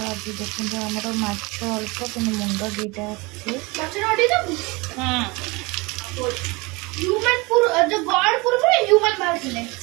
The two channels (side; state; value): left; quieter; 25.5 dB